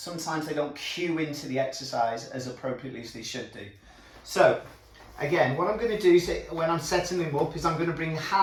they don't cue into the exercise as appropriately as they should do. So again, what I'm going to do is, when I'm setting them up, is I'm going to bring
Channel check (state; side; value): identical; both; correlation 1.00